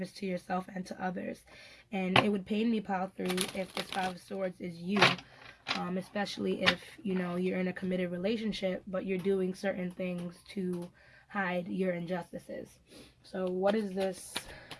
to yourself and to others. And it would pain me, Pile 3, if this Five of Swords is you. Especially if, you're in a committed relationship, but you're doing certain things to hide your injustices. So what is this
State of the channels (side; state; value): both; identical; correlation 1.00